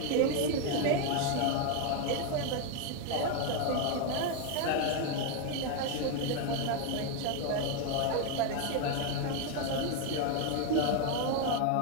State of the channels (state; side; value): different; both; correlation 0.01